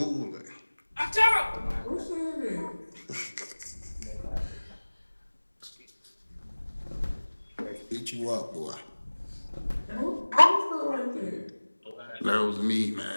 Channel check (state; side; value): inverted; both; correlation -1.00